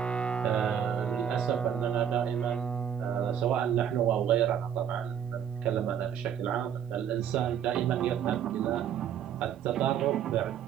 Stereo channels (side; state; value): left; quieter; 8.8 dB